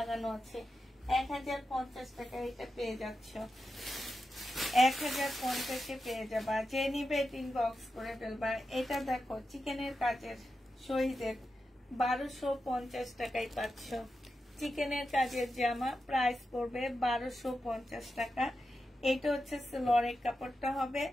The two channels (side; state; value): both; normal; correlation 0.89